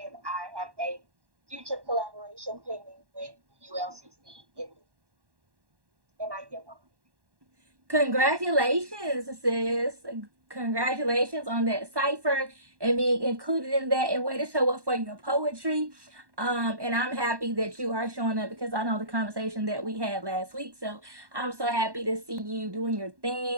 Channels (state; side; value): late; left; 1.1 ms